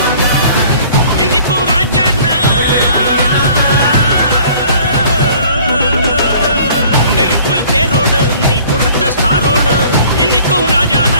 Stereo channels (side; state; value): both; inverted; correlation -0.53